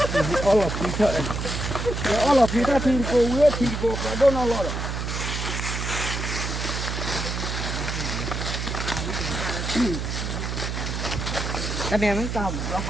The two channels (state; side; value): noise; right; hum, 3 dB below the sound